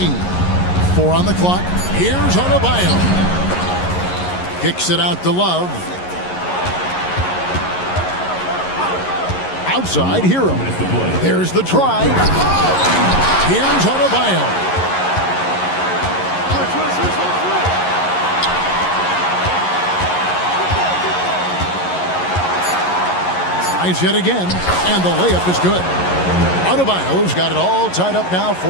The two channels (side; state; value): right; late; 11 ms